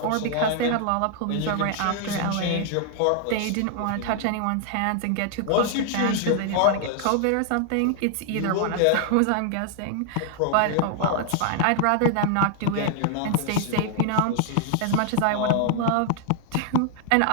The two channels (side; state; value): both; different; correlation 0.00